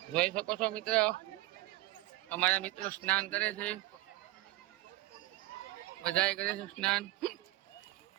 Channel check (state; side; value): quieter; left; 18.3 dB